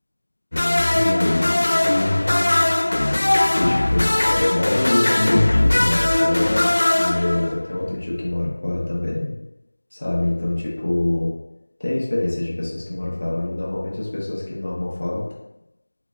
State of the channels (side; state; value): both; inverted; correlation -1.00